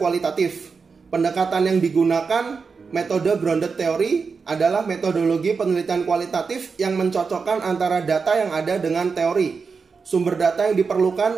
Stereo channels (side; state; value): left; quieter; 5.1 dB